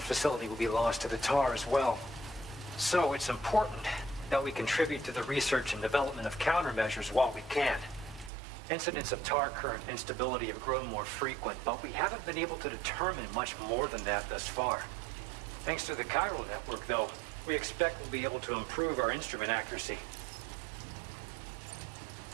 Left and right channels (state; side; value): drops out; left; at 8.3 s